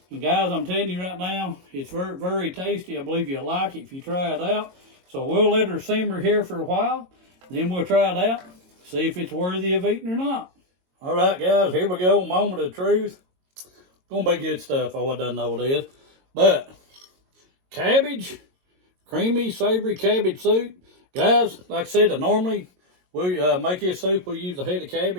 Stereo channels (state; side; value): late; left; 22 ms